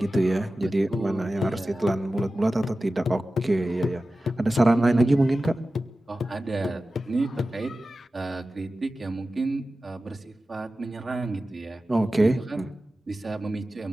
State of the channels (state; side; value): normal; both; correlation 0.95